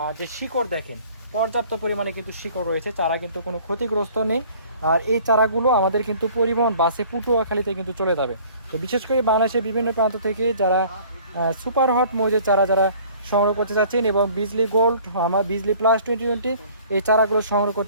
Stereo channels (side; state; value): both; inverted; correlation -0.52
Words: যে শিকড় দেখেন, পর্যাপ্ত পরিমাণে কিন্তু শিকড় রয়েছে, চারা কিন্তু কোনো ক্ষতিগ্রস্ত নেই। আর এই চারাগুলো আমাদের কিন্তু পরিবহন বাসে পটুয়াখালীতে কিন্তু চলে যাবে। তো বিশেষ করে বাংলাদেশের বিভিন্ন প্রান্ত থেকে যারা সুপার হট মৌজের চারা যারা সংগ্রহ করতে চাচ্ছেন এবং বিজলি গোল্ড আমার বিজলি প্লাস 2020 এই চারাগুলো সংগ্রহ